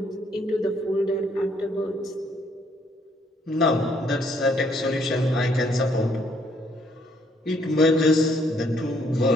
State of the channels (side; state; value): both; normal; correlation 0.68